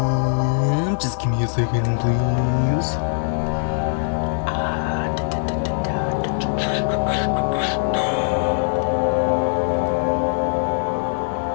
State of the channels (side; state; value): right; silent; digital silence